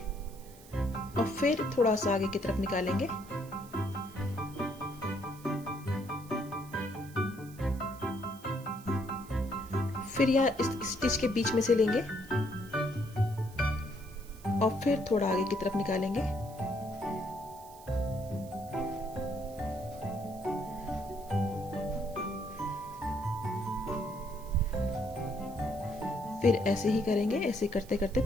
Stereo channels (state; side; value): noise; right; hiss, 21 dB below the sound